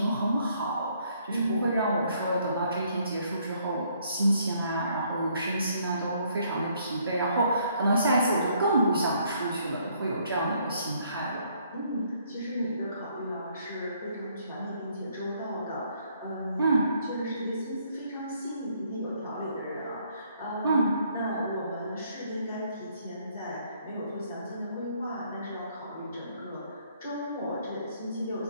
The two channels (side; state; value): both; inverted; correlation -0.67